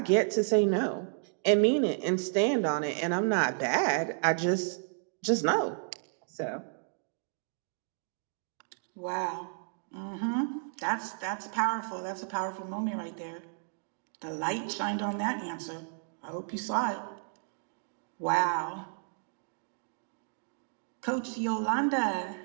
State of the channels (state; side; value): silent; left; digital silence